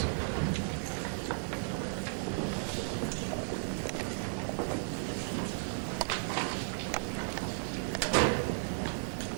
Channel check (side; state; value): left; silent; digital silence